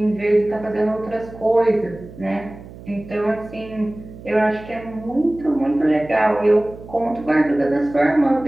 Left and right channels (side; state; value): right; noise; hum, 17 dB below the sound